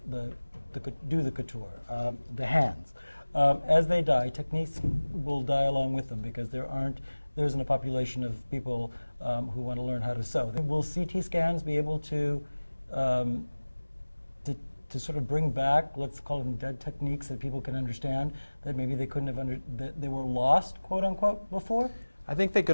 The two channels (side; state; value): both; inverted; correlation -1.00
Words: do the couture, the hands, as they die, techniques will die along with them, because there isn't a population of people who want to learn how to sew. Will CT scans be able to sort of bring back, let's call them dead techniques that people can understand, that maybe they couldn't have that they were lost, quote unquote, before? I think they